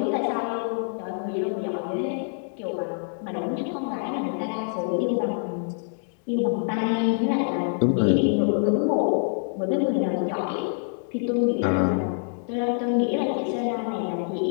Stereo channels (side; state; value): right; silent; digital silence